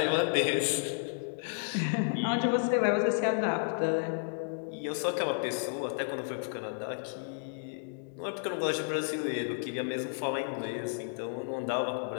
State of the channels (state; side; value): silent; right; digital silence